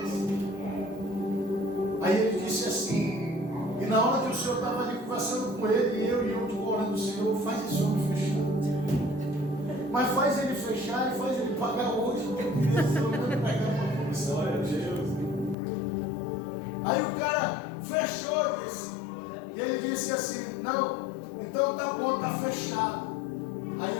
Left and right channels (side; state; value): right; drops out; at 15.6 s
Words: Aí ele disse assim, e na hora que o Senhor estava ali conversando com ele, e eu orando, Senhor, faz esse homem fechar. Mas faz ele fechar e faz ele pagar hoje, porque eu queria ser pegar uma comissão. Aí o cara fechou, disse, e ele disse assim, não, então tá bom, tá fechado. Aí